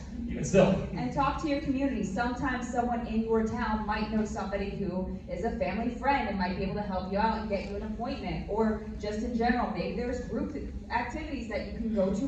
even still. And talk to your community. Sometimes someone in your town might know somebody who is a family friend and might be able to help you out and get you an appointment. Or just in general, maybe there's group activities that you can go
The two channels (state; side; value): identical; both; correlation 1.00